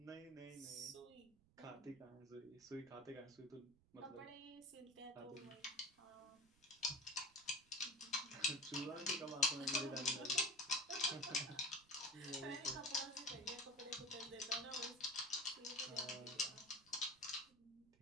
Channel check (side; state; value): right; noise; rumble, 29 dB below the sound